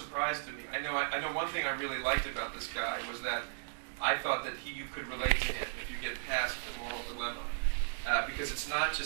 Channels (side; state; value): left; silent; digital silence